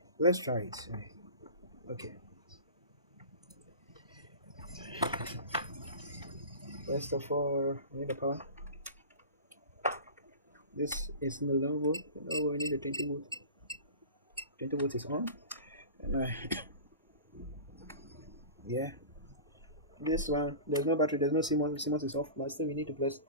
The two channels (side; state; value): both; inverted; correlation -0.35